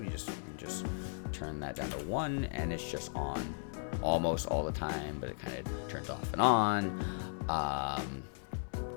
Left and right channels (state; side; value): silent; right; 53 dB below the other